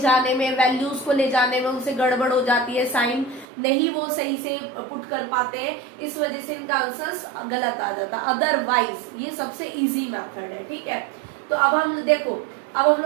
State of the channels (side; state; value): left; drops out; at 3.5 s